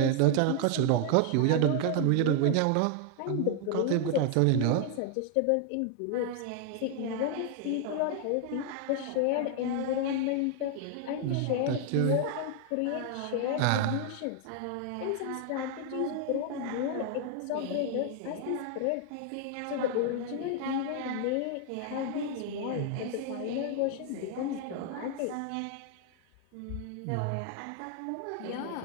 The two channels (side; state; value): both; different; correlation 0.00